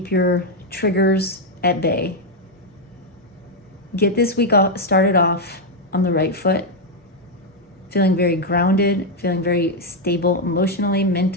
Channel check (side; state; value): both; normal; correlation 0.01